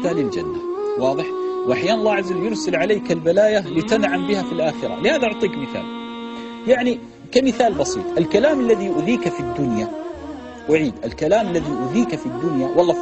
للجنة، واضح؟ وأحيانا الله عز وجل يرسل عليك البلايا لتنعم بها في الآخرة. لهذا أعطيك مثال، يعني كمثال بسيط، الكلام الذي يؤذيك في الدنيا، أعيد، الكلام الذي يؤذيك في الدنيا، والله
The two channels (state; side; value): identical; both; correlation 1.00